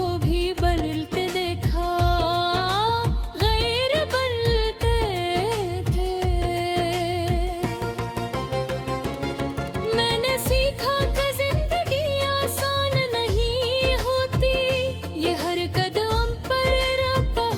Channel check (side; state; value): both; identical; correlation 1.00